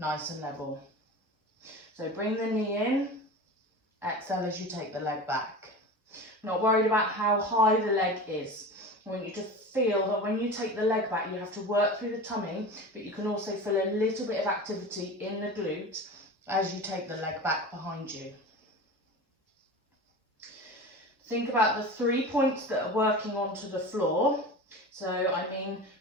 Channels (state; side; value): normal; both; correlation 0.32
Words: and level. So bring the knee in, exhale as you take the leg back. Not worried about how high the leg is. I want you to feel that when you take the leg back, you have to work through the tummy, but you can also feel a little bit of activity in the glute as you take the leg back behind you. Think about the 3 points that are working onto the floor. So I mean